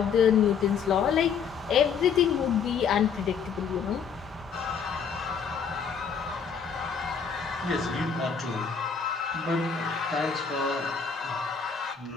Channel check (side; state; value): right; quieter; 6.5 dB